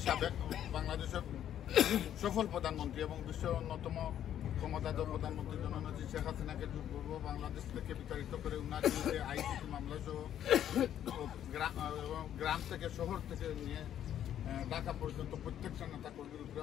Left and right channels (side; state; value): right; quieter; 10.5 dB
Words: সাবেক বাংলাদেশের সফল প্রধানমন্ত্রী এবং বিশ্বের অন্যতম ক্ষমতাধর প্রধানমন্ত্রী জননেত্রী শেখ হাসিনাকে পূর্ব বাংলাদেশ থেকে বিতাড়িত করে উনার বিরুদ্ধে আইসিটি মামলা সহ গ্রাম থেকে শহর থেকে নিয়ে ঢাকা পর্যন্ত প্রত্যেকটা নেতা কর্মীর